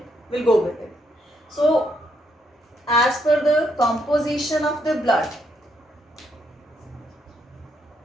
we'll go with it. So, as per the composition of the blood,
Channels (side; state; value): both; normal; correlation 0.75